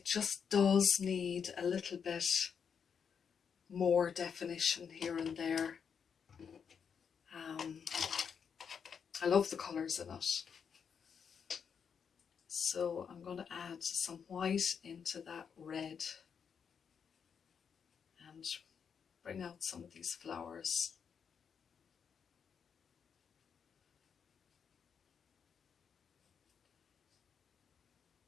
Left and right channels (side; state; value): right; quieter; 6.9 dB